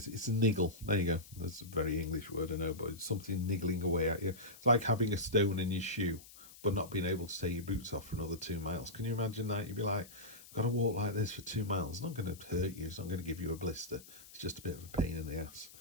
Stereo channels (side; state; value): left; noise; hiss, 19 dB below the sound